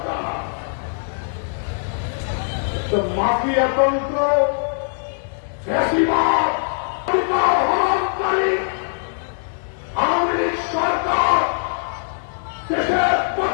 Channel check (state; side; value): silent; right; 65 dB below the other